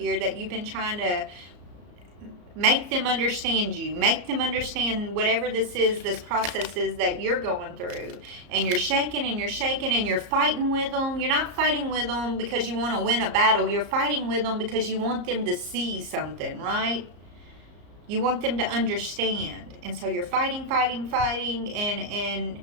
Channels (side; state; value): left; late; 34 ms